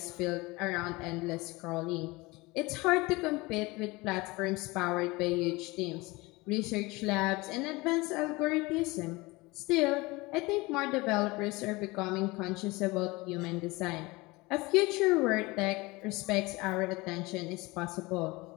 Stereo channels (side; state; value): right; quieter; 22.9 dB